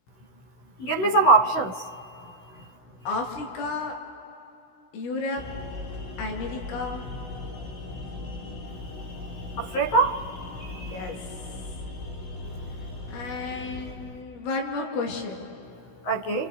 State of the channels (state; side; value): late; right; 16 ms